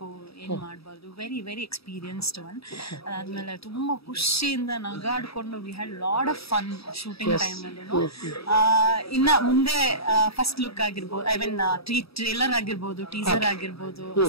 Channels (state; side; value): late; right; 0.77 ms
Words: ಏನ್ ಮಾಡ್ಬಾರ್ದು. Very very experienced one. ಅದಾದ್ಮೇಲೆ ತುಂಬಾ ಖುಷಿಯಿಂದ ನಗಾಡ್ಕೊಂಡು we had lot of fun shooting time ಅಲ್ಲಿ. ಇನ್ನ ಮುಂದೆ ಫಸ್ಟ್ ಲುಕ್ ಆಗಿರ್ಬೋದು, ಐ ಮೀನ್ ಟ್ರೇಲರ್ ಆಗಿರ್ಬೋದು, ಟೀಸರ್ ಆಗಿರ್ಬೋದು,